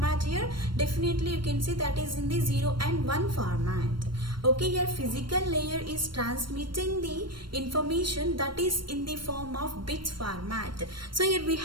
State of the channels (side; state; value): left; late; 0.72 ms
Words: here definitely you can see that is in the 0 and 1 format. Okay, here physical layer is transmitting the information that is in the form of bits format. So here we